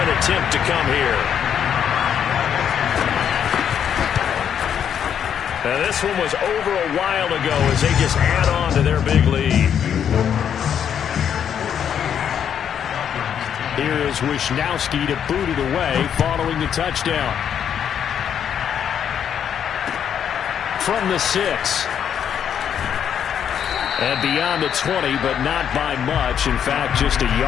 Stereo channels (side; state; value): right; quieter; 8.6 dB